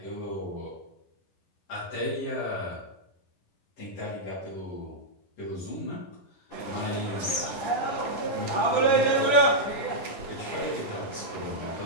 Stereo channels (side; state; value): right; late; 10 ms